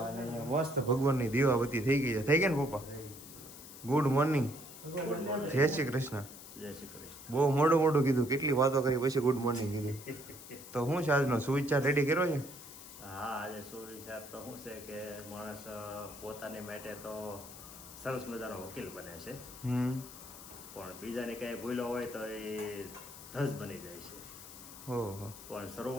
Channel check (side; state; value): left; noise; hiss, 15 dB below the sound